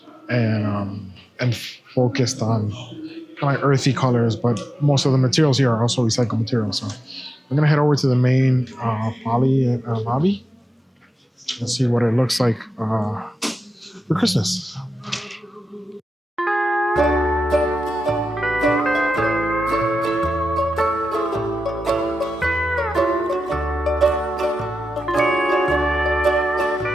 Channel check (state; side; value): normal; both; correlation 0.91